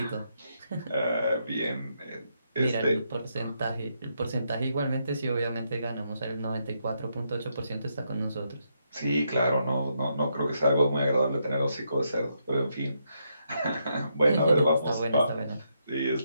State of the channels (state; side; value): inverted; both; correlation -0.79